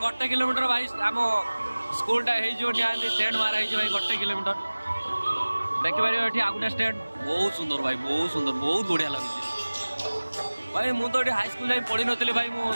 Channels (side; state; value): both; inverted; correlation -1.00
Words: किलोमीटर भाई आम स्कूलटा निहाती स्टैंड मारा भाई गोटे किलोमीटर देखिपारे ये आगुटा स्टैंड बहुत सुंदर भाई बहुत सुंदर बहुत बढ़िया लगे भाई मुझे तो हाई स्कूल जाए पढ़ी नी भाई